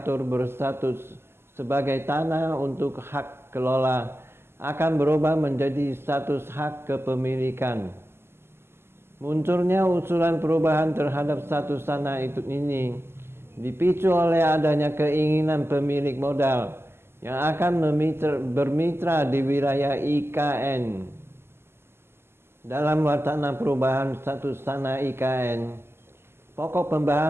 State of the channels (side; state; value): left; late; 0.12 ms